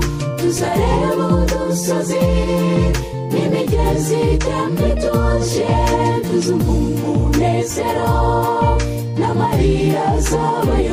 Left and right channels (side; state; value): both; identical; correlation 1.00